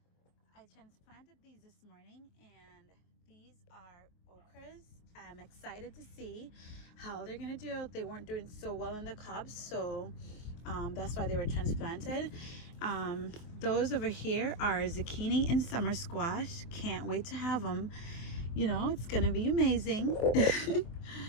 I planted these this morning, and these are okras. I'm excited to see how they're gonna do. They weren't doing so well in the cobs, so that's why they were transplanted. Those over here are zucchini and summer squash. Can't wait to have them. You know, it's gonna be amazing.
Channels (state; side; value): late; right; 23 ms